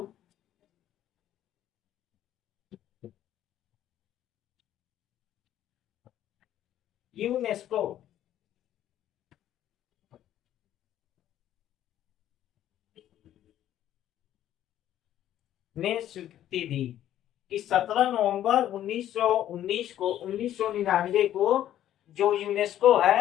यूनेस्को ने स्वीकृति दी कि 17 नवंबर 1999 को जो यूनेस्को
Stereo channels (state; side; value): quieter; right; 11.9 dB